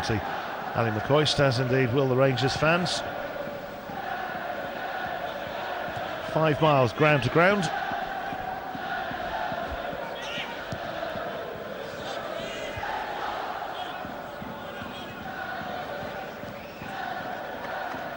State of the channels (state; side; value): identical; both; correlation 1.00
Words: he? Ali McCoist, as indeed will the Rangers fans. 5 miles ground to ground.